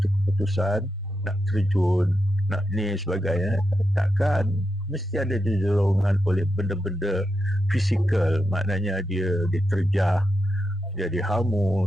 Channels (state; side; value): normal; both; correlation 0.86